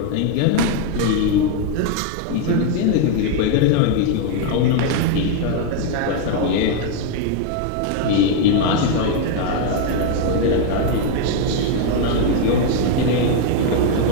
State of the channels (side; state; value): both; different; correlation 0.01